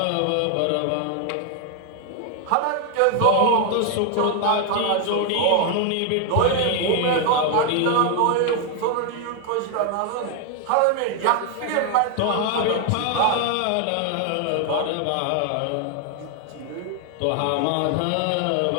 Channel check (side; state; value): both; different; correlation 0.00